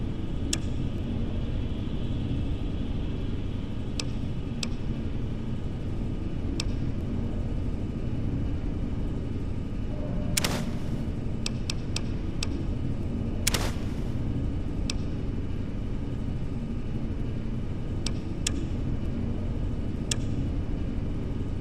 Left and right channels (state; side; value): identical; both; correlation 1.00